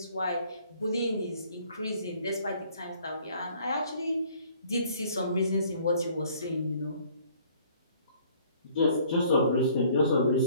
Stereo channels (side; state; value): both; inverted; correlation -0.58